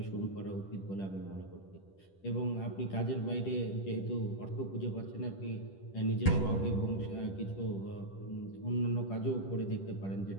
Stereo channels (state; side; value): late; right; 10 ms